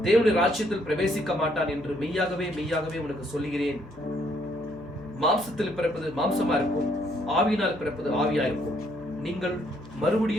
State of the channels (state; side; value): noise; left; hum, 20 dB below the sound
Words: தேவனுடைய ராஜ்யத்தில் பிரவேசிக்க மாட்டான் என்று மெய்யாகவே மெய்யாகவே உனக்கு சொல்லுகிறேன். மாம்சத்தில் பிறப்பது மாம்சமா இருக்கும், ஆவியினால் பிறப்பது ஆவியா இருக்கும். நீங்கள்